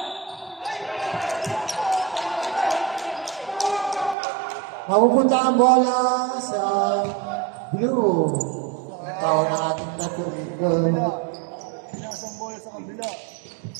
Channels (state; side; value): drops out; left; at 4.2 s